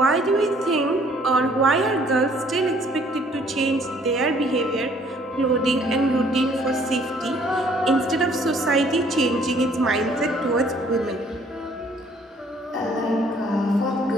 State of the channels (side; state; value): both; normal; correlation 0.60